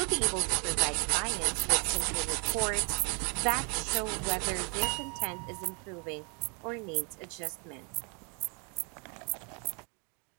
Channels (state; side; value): quieter; left; 36.0 dB